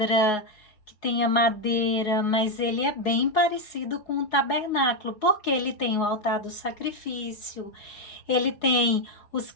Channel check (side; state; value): right; late; 4.8 ms